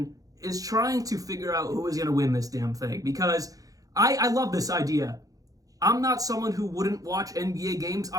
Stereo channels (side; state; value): left; late; 0.17 ms